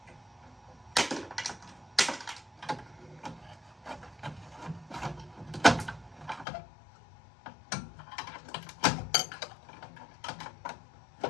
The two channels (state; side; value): drops out; right; at 6.5 s